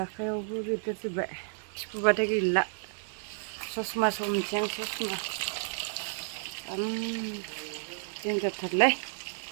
आखाइयावबो बेरदेरजोब्बाय थिफुबाथाय गैला ससमा हमनोसै आं ससमा देनजारथारलै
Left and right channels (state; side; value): silent; left; 57 dB below the other